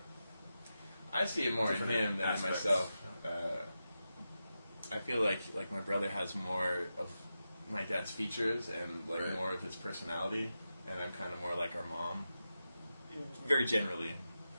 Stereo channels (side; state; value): both; inverted; correlation -0.91